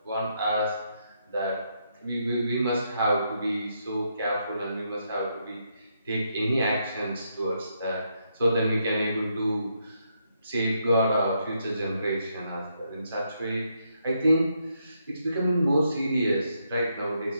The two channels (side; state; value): both; inverted; correlation -0.78